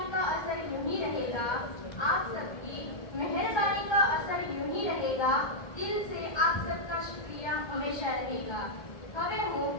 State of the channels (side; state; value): right; late; 2.1 ms